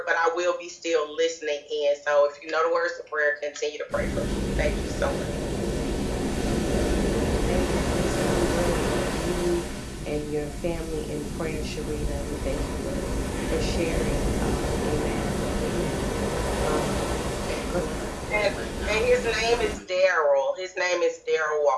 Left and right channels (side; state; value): both; identical; correlation 1.00